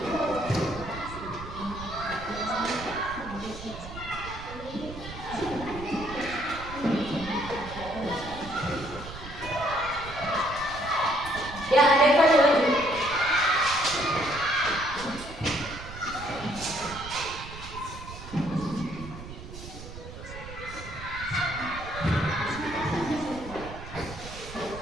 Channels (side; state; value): right; noise; rumble, 12 dB below the sound